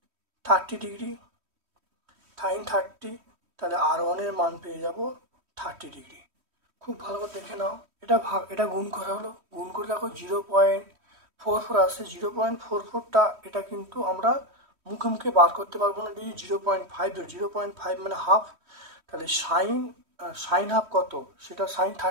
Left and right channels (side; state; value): left; late; 3.1 ms